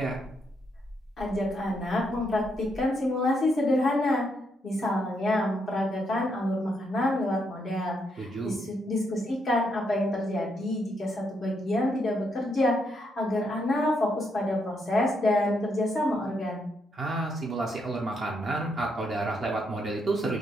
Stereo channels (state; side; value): normal; both; correlation 0.77